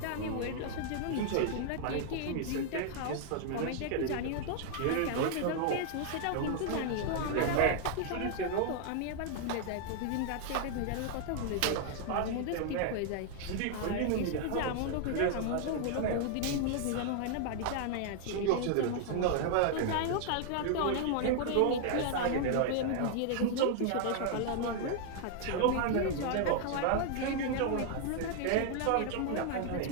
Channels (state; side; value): different; both; correlation 0.00